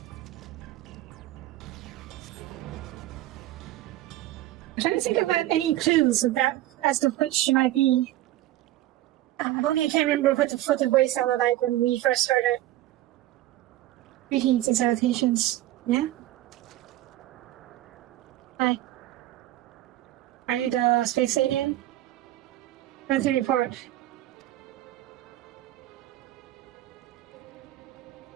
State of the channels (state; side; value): quieter; left; 14.8 dB